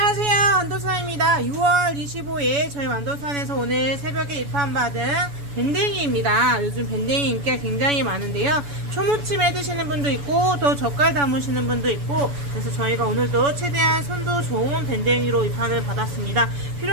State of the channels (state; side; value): late; left; 7.0 ms